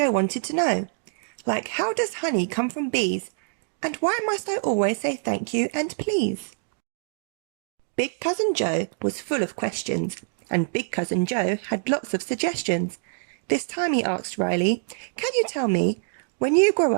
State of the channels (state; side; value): silent; left; digital silence